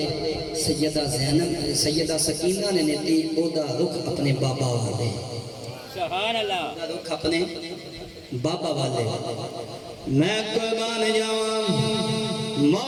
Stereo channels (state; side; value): identical; both; correlation 1.00